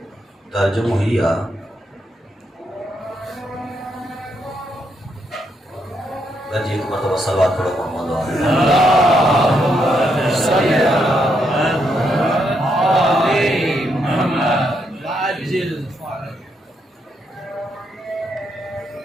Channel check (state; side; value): normal; both; correlation 0.78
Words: ترجمہ ہی آ گنجی ایک مرتبہ صلوات پڑھو محمد